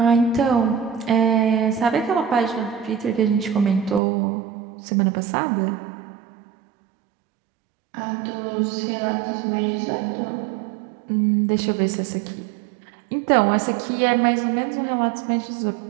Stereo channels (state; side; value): drops out; left; at 4.0 s